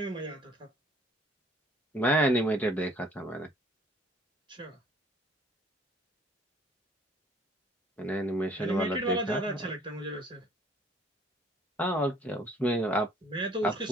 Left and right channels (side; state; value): both; normal; correlation 0.57